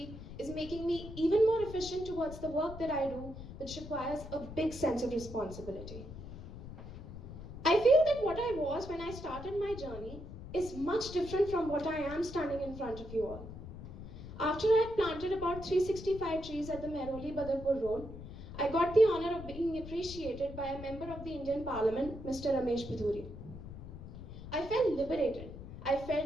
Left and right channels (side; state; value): left; noise; rumble, 12 dB below the sound